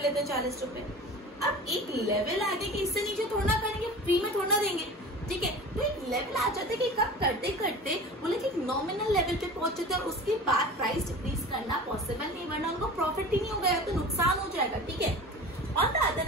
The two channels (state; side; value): normal; both; correlation 0.37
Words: लेते हैं 40 रुपए. अब एक लेवल आ गया कि इससे नीचे थोड़ा करेंगे, फ्री में थोड़ा देंगे, ठीक है. तो एक लेवल आ जाता है कि कब करते करते बोले कि नॉमिनल लेवल पे पहुंच जाते हैं और उसके बाद प्राइस डिक्रीज करना पॉसिबल नहीं, वरना उनको प्रॉफिट ही नहीं हो गया तो नुकसान हो जाएगा, ठीक है. On the other